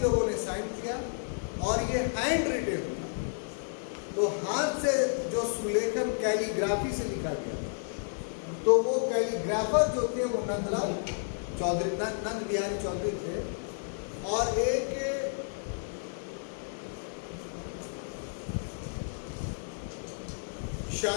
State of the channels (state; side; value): silent; right; digital silence